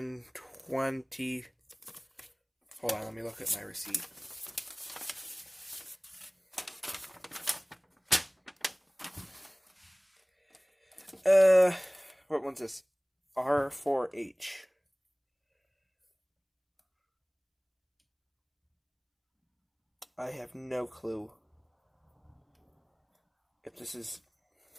20. Hold on, let me look at my receipt. What one's this? R4H. I have no clue if this is.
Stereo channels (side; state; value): both; identical; correlation 1.00